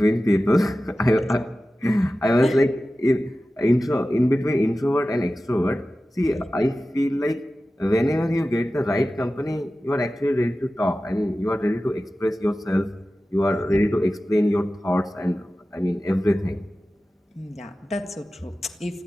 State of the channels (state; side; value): normal; both; correlation 0.95